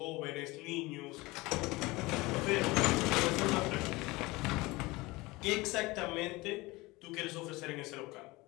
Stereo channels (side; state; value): right; quieter; 22.0 dB